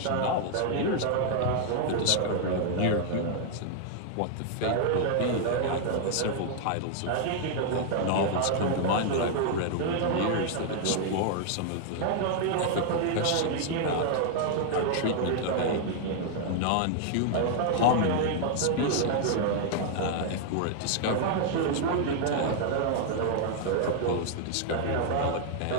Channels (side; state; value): both; different; correlation 0.00